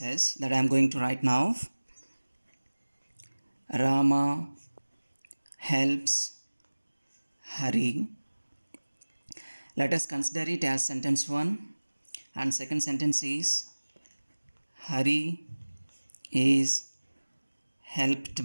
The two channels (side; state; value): both; inverted; correlation -1.00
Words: that I am going to write now. Rama helps Hari. Let us consider it as sentence 1, and second sentence is Hari is